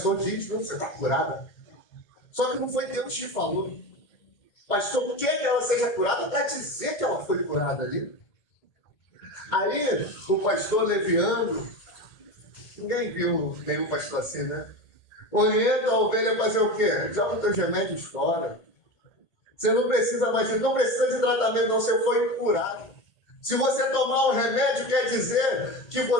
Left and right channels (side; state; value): right; late; 1.8 ms